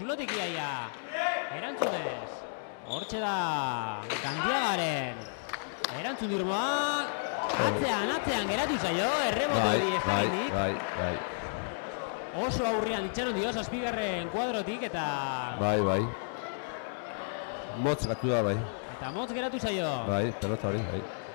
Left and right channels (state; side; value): silent; right; digital silence